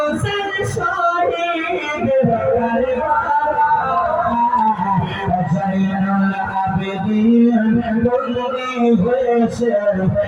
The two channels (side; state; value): both; identical; correlation 1.00